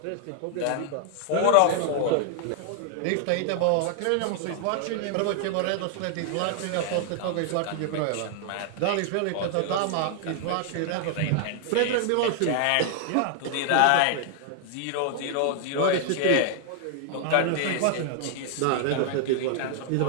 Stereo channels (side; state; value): both; different; correlation 0.00